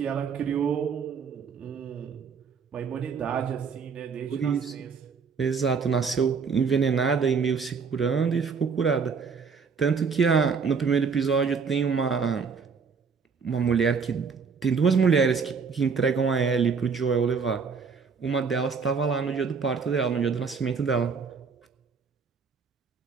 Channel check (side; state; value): left; quieter; 5.6 dB